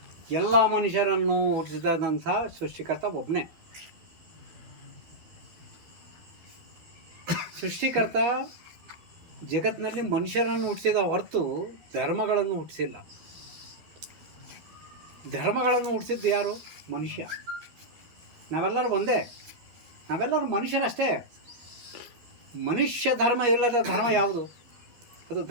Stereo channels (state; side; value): late; left; 12 ms